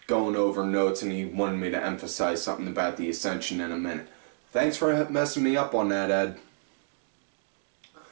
going over notes, and he wanted me to emphasize something about the Ascension in a minute. Thanks for messing me up on that, Ed.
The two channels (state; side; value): silent; left; digital silence